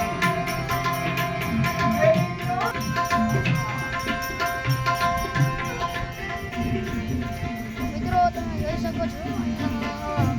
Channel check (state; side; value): identical; both; correlation 1.00